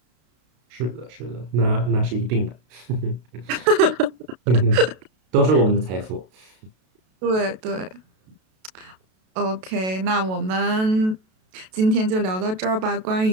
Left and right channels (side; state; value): left; late; 32 ms